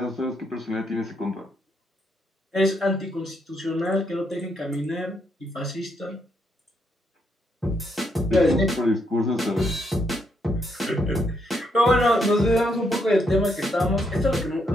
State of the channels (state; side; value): normal; both; correlation 0.76